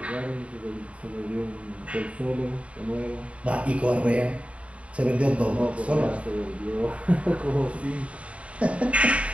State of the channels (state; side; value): late; left; 0.064 ms